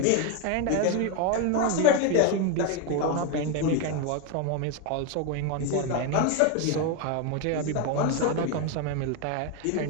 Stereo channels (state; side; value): different; both; correlation 0.02